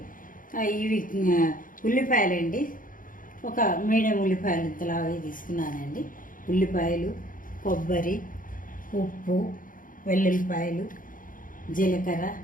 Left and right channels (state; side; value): late; right; 0.39 ms